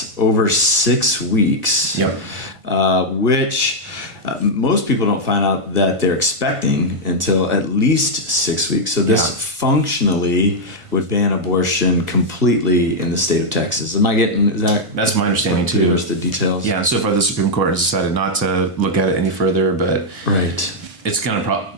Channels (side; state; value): left; late; 1.5 ms